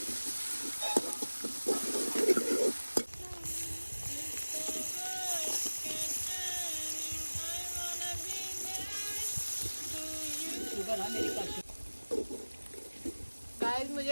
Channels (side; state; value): both; inverted; correlation -1.00